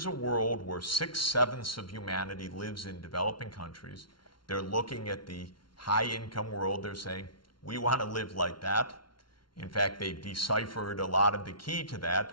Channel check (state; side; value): late; right; 0.73 ms